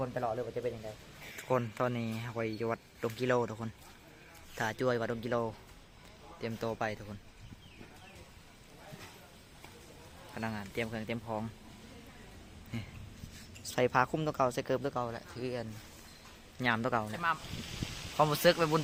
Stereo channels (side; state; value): both; identical; correlation 1.00